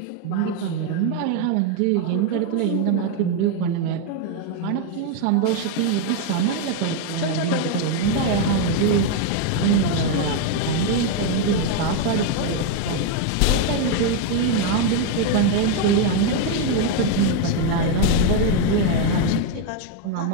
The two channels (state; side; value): different; both; correlation 0.01